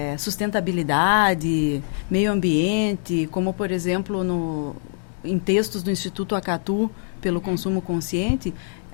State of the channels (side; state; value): right; silent; digital silence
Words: sustentabilidade, meio ambiente, como, por exemplo, em textos do Instituto Acatu, pelo consumo consciente,